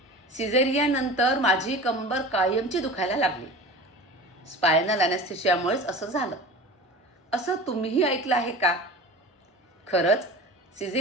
सिझेरियननंतर माझी कंबर कायमची दुखायला लागली. स्पायनल ॲनेस्थेशियामुळेच असं झालं. असं तुम्हीही ऐकलं आहे का? खरंच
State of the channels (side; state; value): both; normal; correlation 0.36